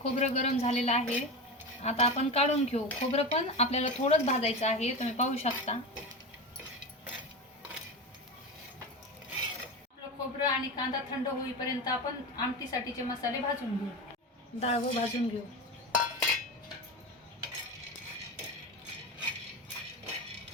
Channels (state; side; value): normal; both; correlation 0.23